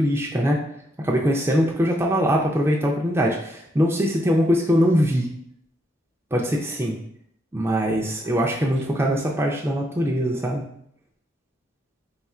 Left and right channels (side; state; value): both; normal; correlation 0.77